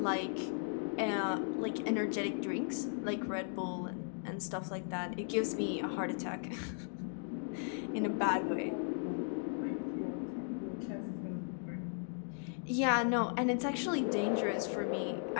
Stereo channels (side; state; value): right; silent; 53 dB below the other